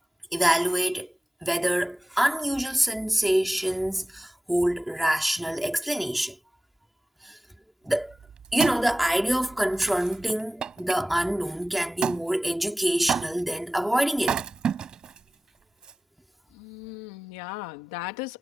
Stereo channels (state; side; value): normal; both; correlation 0.96